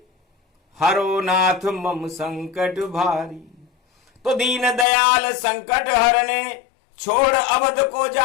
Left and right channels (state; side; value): drops out; right; at 4.9 s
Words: हरो नाथ मम संकट भारी। तो दीन दयाल संकट हरने छोड़ अवध को